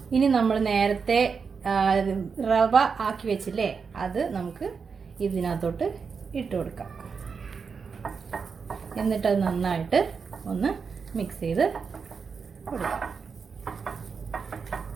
ഇനി നമ്മൾ നേരത്തെ റവ ആക്കി വെച്ചില്ലേ, അത് നമുക്ക് ഇതിനകത്തോട്ട് ഇട്ട് കൊടുക്കാം. എന്നിട്ടത് നന്നായിട്ട് ഒന്ന് മിക്സ് ചെയ്ത് കൊടുക്കാം.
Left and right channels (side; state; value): left; quieter; 5.6 dB